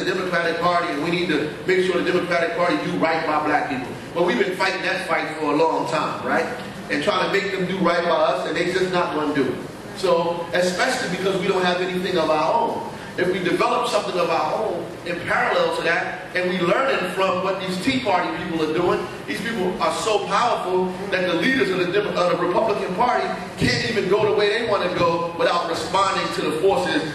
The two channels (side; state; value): both; identical; correlation 1.00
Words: Democratic Party and we need to make sure the Democratic Party do right by black people. Well, we've been fighting that fight for a long time, right? And trying to make them do right by us, and they're just not going to do it. So, especially because we don't have anything of our own. If we develop something of our own in parallel to that, and we learn it from what these Tea Party people are doing, these people are so powerful that the leaders of the Republican Party can't even go the way they want to go without responding to the forces